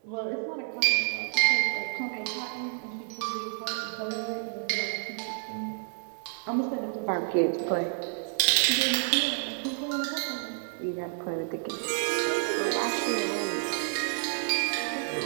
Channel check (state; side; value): silent; left; digital silence